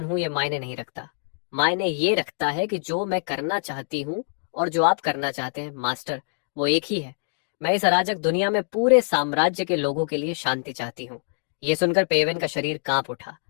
हूं ये मायने नहीं रखता, मायने ये रखता है कि जो मैं करना चाहती हूं और जो आप करना चाहते हैं मास्टर, वो एक ही है। मैं इस अराजक दुनिया में पूरे साम्राज्य के लोगों के लिए शांति चाहती हूँ। ये सुनकर पेवेन का शरीर कांप उठा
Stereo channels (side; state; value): right; silent; digital silence